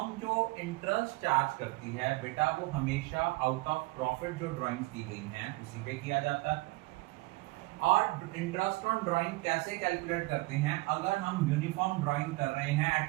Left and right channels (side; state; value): left; quieter; 22.2 dB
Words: जो इंटरेस्ट चार्ज करती है बेटा वो हमेशा आउट ऑफ प्रॉफिट जो ड्राइंग्स दी गई हैं उसी पे किया जाता है। और इंटरेस्ट ऑन ड्राइंग कैसे कैलकुलेट करते हैं? अगर हम यूनिफॉर्म ड्राइंग कर रहे हैं